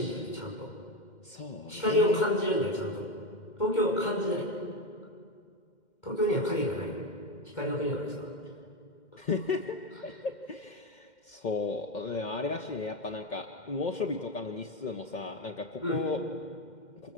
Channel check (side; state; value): right; late; 2.1 ms